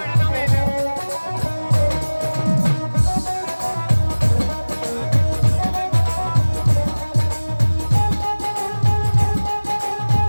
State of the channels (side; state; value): both; inverted; correlation -1.00